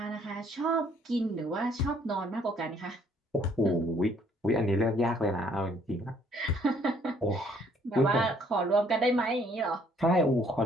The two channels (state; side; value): normal; both; correlation 0.63